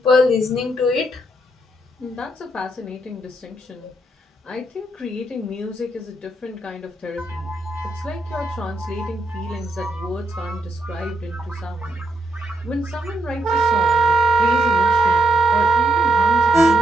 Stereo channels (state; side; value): normal; both; correlation 0.78